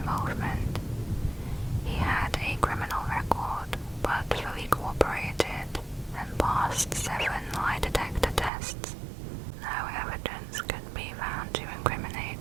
He had a criminal record, but fully cooperated and passed 7 lie detector tests. No evidence could be found to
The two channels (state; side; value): drops out; left; at 8.5 s